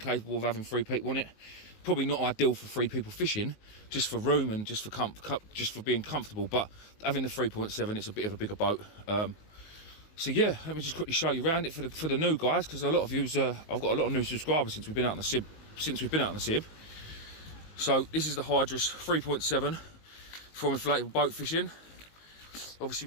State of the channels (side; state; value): right; late; 19 ms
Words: of having 3 people on it. Probably not ideal for 3 people fishing, just for room and just for being comfortable. But having the 3.7, it's a bit of a bigger boat. So yeah, let me just quickly show you around it for the new guys, because a lot of you's I've got a lot of new subscribers since we've been out on the Sib. So this is the Hydras 3.7 from Inflatable boat fishing. Obviously